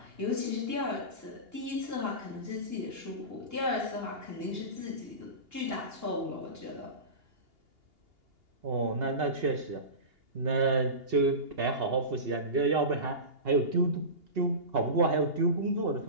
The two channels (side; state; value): left; late; 2.8 ms